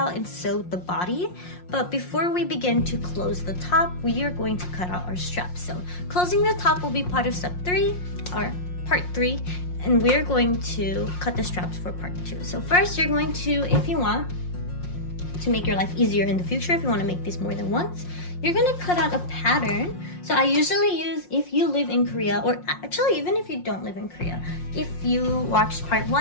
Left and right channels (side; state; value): right; late; 5.6 ms